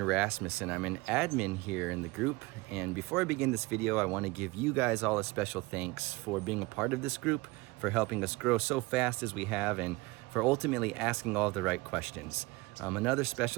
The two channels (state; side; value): quieter; left; 23.2 dB